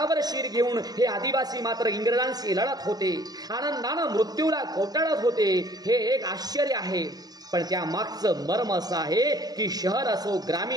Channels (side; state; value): left; late; 0.19 ms